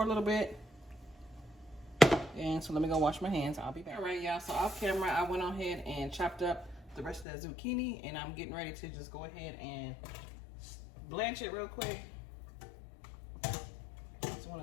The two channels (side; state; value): right; drops out; at 7.2 s